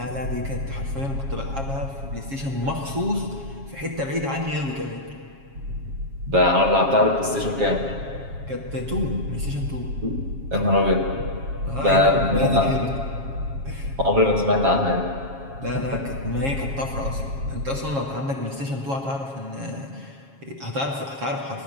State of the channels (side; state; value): left; late; 7.3 ms